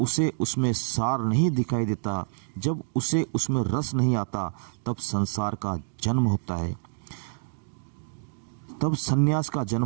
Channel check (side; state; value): left; silent; digital silence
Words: उसमें सार नहीं दिखाई देता, जब उसे उसमें रस नहीं आता, तब संसार का जन्म होता है, तब संन्यास का